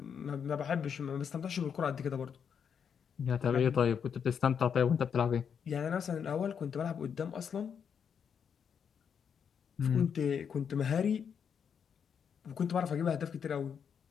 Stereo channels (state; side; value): quieter; right; 7.3 dB